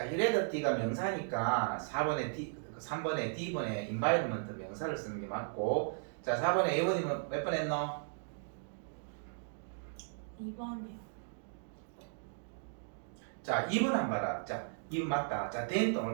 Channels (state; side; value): silent; left; digital silence